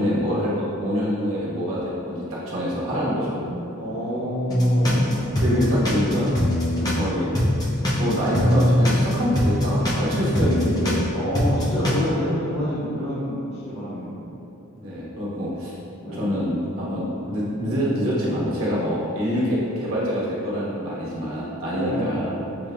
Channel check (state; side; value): normal; both; correlation 0.67